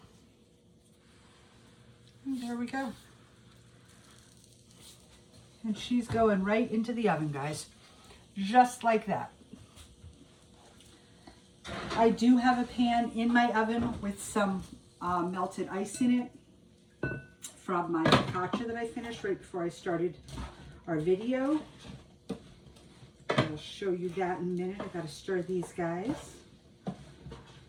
And there we go. And she's going right into the oven, guys. Just like that. I do have a pan in my oven with some melted ice in it from my focaccia that I finished right before I started our video. I'll show you that in a minute. I gotta stir these guys.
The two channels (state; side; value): identical; both; correlation 1.00